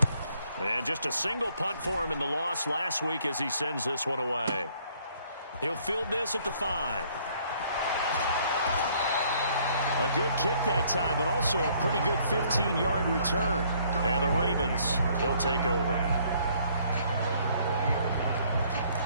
And just a single punt for him in the loss last week as he sends this one away. He'll field this at the 5. A good kick that time, but also a pretty good 15-yard return. And the Ravens, they'll take over.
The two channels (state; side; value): inverted; both; correlation -0.63